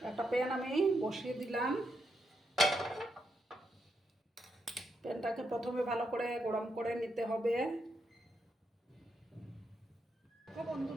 একটা প্যান আমি বসিয়ে দিলাম। প্যানটাকে প্রথমে ভালো করে গরম করে নিতে হবে।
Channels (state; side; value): normal; both; correlation 0.81